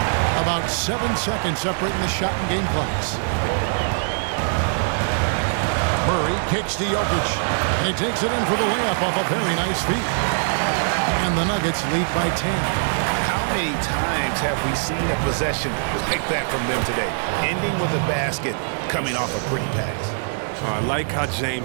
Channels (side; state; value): left; silent; digital silence